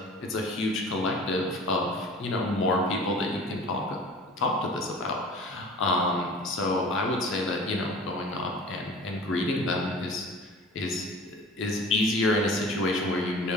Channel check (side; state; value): both; normal; correlation 0.42